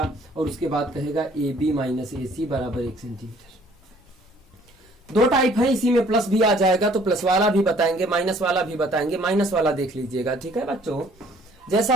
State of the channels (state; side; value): normal; both; correlation 0.58